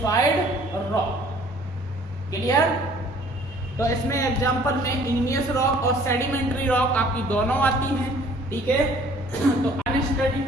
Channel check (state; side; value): normal; both; correlation 0.55